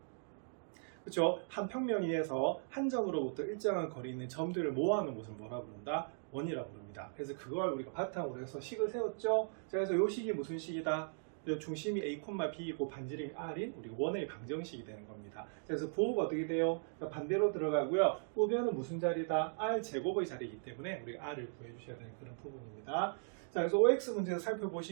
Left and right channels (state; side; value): silent; left; digital silence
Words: 그렇죠? 한 평면 위에서 한 점으로부터 일정한 거리에 있는 점들을 모아놓은 것을 뭐라 부른다? 원이라고 부릅니다. 그래서 그걸 우리가 바탕으로 해서 식을 세웠죠. 자, 그래서 이 식이 무슨 식이다? 중심이 A, B이고 반지름이 R인 우리 원의 방정식이 되는 겁니다. 그래서 부호가 어떻게 돼요? 반대로 들어가고요. 우변은 무슨 자리다? R 제곱의 자리이기 때문에 우리가 R을 구해 주셔야 되는 그런 부분입니다. 자, 그래서 OX 문제에서